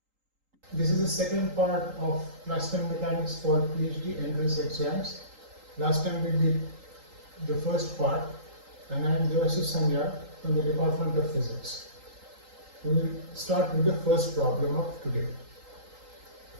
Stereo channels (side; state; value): left; late; 3.8 ms